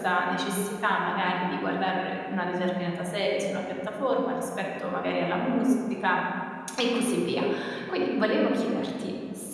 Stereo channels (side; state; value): both; identical; correlation 1.00